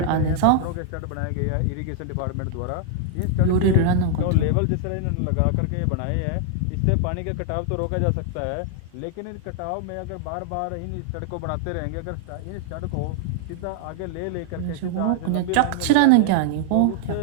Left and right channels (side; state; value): both; different; correlation 0.00